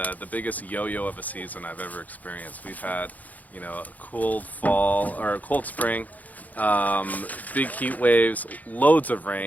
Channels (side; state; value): right; late; 0.078 ms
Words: biggest yo-yo of a season I've ever experienced. We've had, you know, a cold fall or a cold spring, big heat waves, loads of